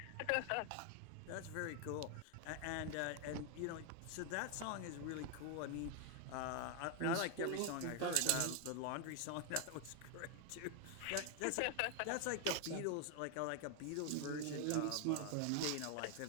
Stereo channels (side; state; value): both; different; correlation 0.01